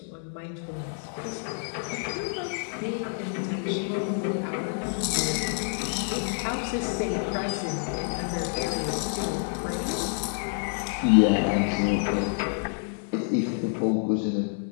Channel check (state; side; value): silent; right; 59 dB below the other